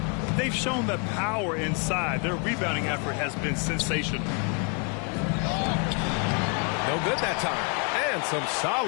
They've shown the power inside. Their rebounding effort has been sensational. No good that time. And some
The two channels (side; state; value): right; quieter; 36.5 dB